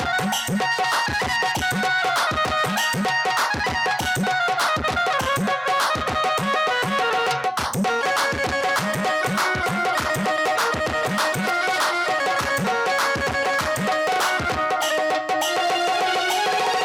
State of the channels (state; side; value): identical; both; correlation 1.00